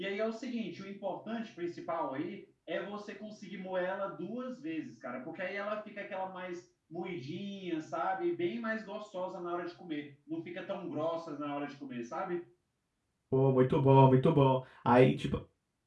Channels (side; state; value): both; identical; correlation 1.00